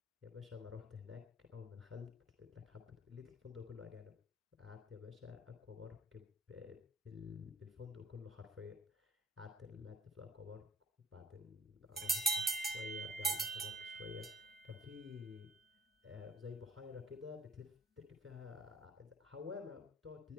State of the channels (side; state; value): both; normal; correlation 0.56